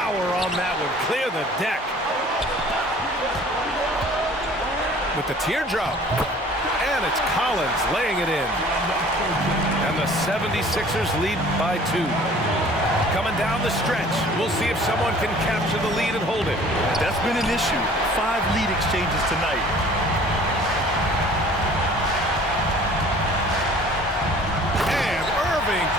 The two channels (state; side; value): normal; both; correlation 0.50